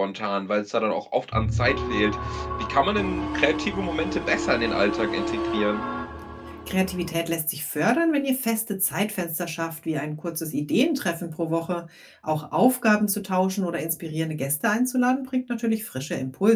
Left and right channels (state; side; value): identical; both; correlation 1.00